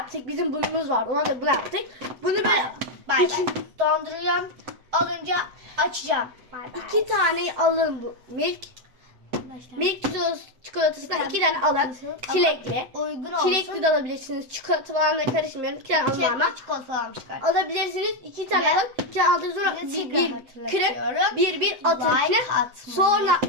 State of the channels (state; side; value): late; left; 8.0 ms